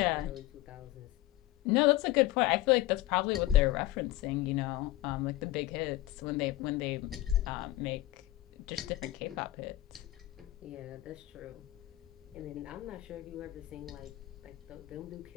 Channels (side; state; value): right; quieter; 16.3 dB